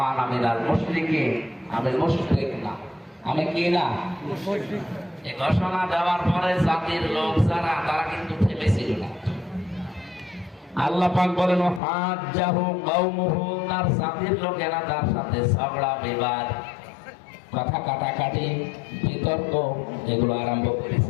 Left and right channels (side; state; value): right; drops out; at 11.8 s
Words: আমিনাল মুশরিকিন, আমি মুশরিক না, আমি কি না, এই ঘোষণা দেওয়ার পরে জাতির লোক যারা তারা কিন্তু থেমেছিল না। আল্লাহ পাক বলেন হাজ্জাহু কওমুহু, তার জাতির লোকেরা তার সাথে ঝগড়া বিবাদ, কথা কাটাকাটি, বিতর্ক এগুলো আরম্ভ